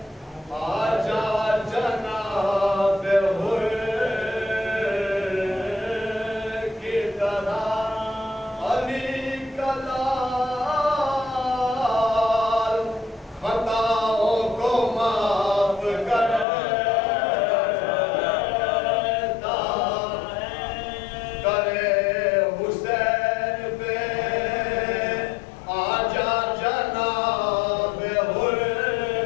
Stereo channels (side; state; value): right; drops out; at 16.4 s